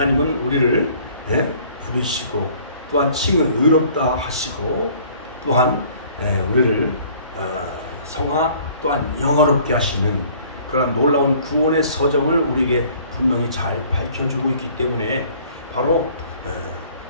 우리를 부르시고 또한 칭을 의롭다 하시고, 또한 우리를 성화 또한 영어롭게 하시는 그런 놀라운 구원의 서정을 우리에게 분명히 잘 밝혀주고 있기 때문에 바로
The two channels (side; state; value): both; inverted; correlation -0.55